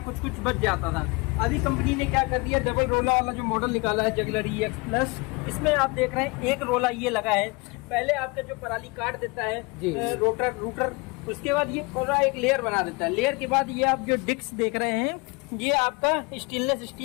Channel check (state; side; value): quieter; right; 27.4 dB